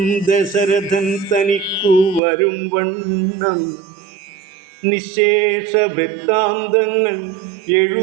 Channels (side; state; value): left; drops out; at 2.2 s